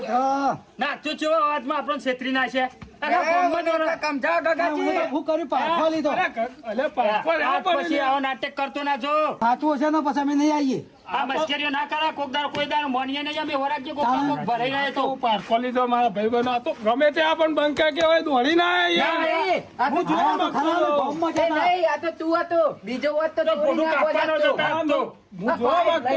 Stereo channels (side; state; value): both; identical; correlation 1.00